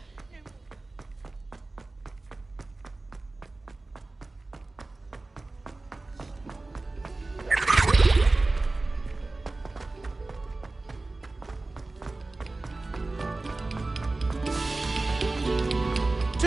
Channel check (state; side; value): quieter; left; 3.2 dB